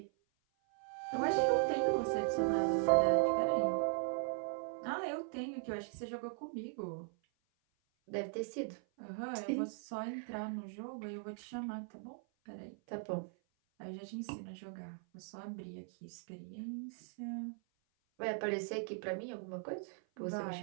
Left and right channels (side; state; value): left; silent; 52 dB below the other